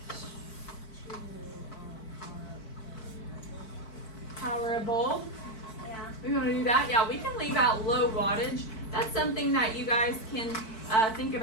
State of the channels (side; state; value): right; late; 4.5 ms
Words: Power a bulb. yeah. We want to do that? Yeah, we can leave out low wattage. That's something that you guys can think